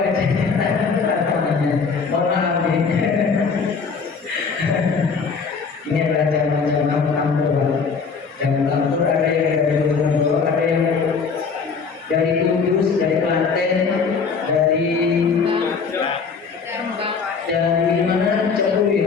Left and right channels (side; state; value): right; quieter; 5.3 dB